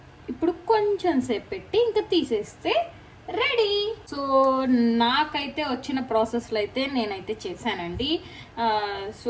ఇప్పుడు కొంచెం సేపు పెట్టి ఇంకా తీసేస్తే రెడీ. సో నాకైతే వచ్చిన ప్రాసెస్లో అయితే నేనైతే చేశానండి.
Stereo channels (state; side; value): identical; both; correlation 1.00